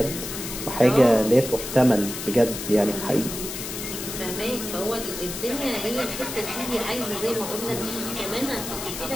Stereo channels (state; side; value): noise; left; hiss, 7 dB below the sound